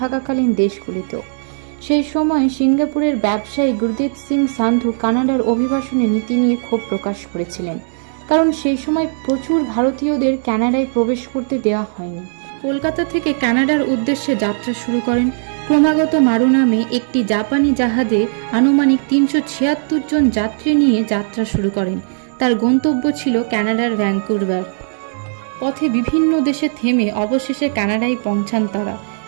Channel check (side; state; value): left; silent; digital silence